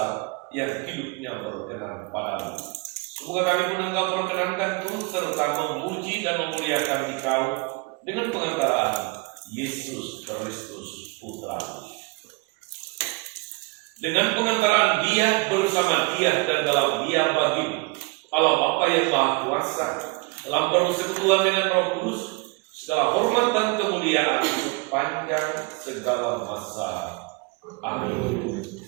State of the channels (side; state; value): left; quieter; 28.4 dB